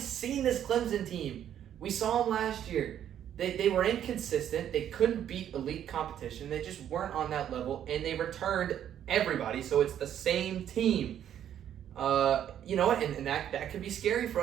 this Clemson team. We saw them last year. They were inconsistent. They couldn't beat elite competition. They just weren't on that level, and they returned everybody, so it's the same team. You know what? And that could be scary for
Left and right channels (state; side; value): quieter; left; 10.2 dB